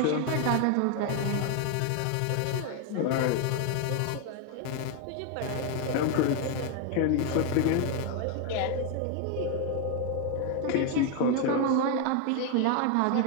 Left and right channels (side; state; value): both; different; correlation 0.01